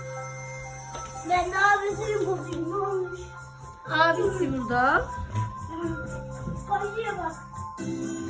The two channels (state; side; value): identical; both; correlation 1.00